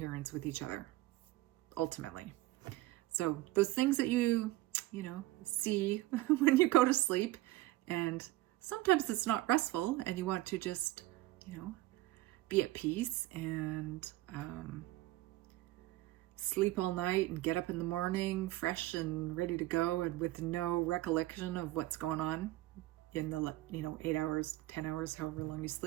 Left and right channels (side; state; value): left; quieter; 17.8 dB